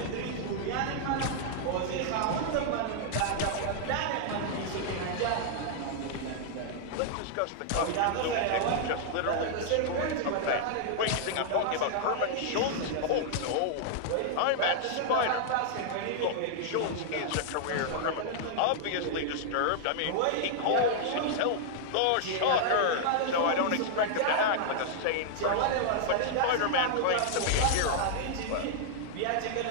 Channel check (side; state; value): both; different; correlation -0.01